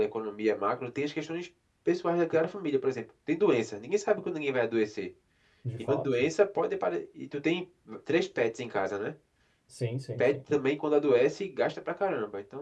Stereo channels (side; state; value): both; identical; correlation 1.00